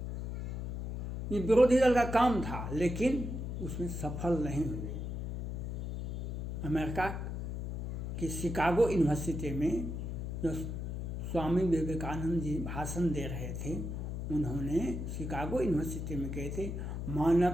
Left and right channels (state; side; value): noise; left; hum, 4 dB below the sound